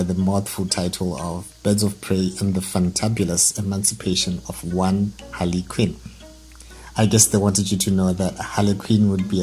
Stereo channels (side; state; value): both; identical; correlation 1.00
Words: the mouthful title of Birds of Prey and the Fantabulous Emancipation of one Harley Quinn. I guess they wanted you to know that Harley Quinn would be